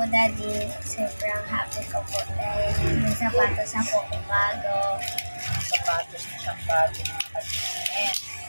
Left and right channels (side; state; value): both; inverted; correlation -1.00